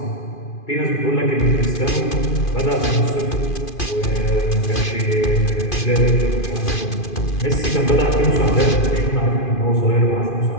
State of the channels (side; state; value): right; late; 2.5 ms